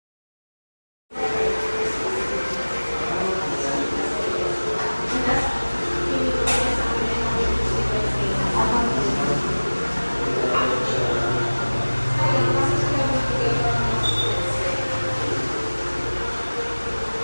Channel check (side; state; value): both; inverted; correlation -1.00